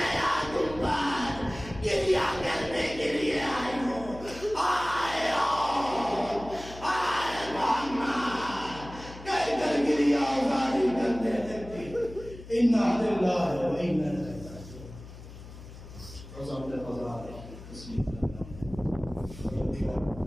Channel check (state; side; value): noise; left; hum, 15 dB below the sound